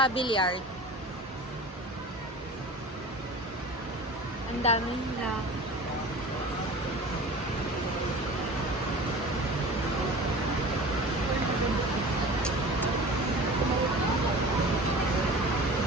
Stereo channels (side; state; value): both; normal; correlation 0.38